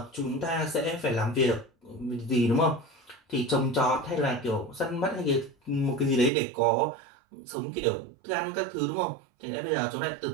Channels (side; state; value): left; drops out; at 6.3 s